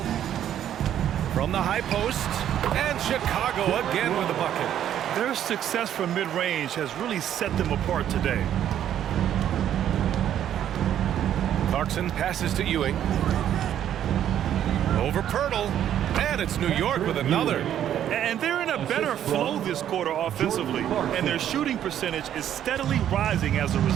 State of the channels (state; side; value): quieter; left; 10.6 dB